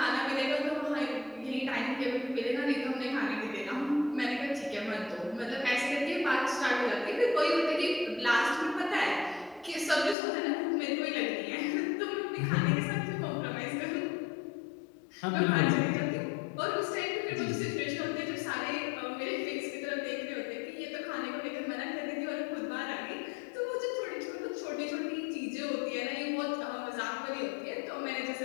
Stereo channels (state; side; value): drops out; right; at 10.2 s